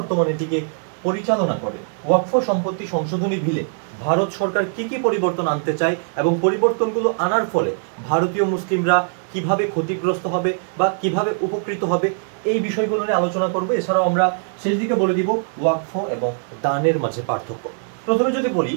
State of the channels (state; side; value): silent; left; digital silence